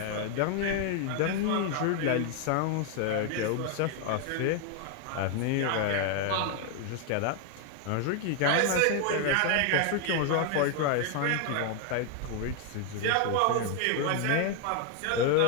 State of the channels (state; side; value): different; both; correlation 0.01